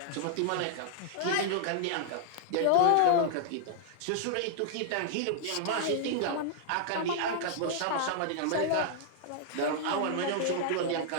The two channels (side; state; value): both; different; correlation -0.01